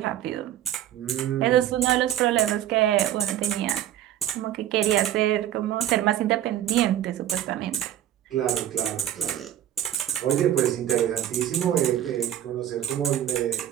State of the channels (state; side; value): quieter; left; 11.6 dB